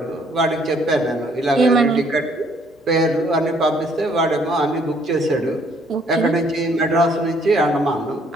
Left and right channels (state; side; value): normal; both; correlation 0.64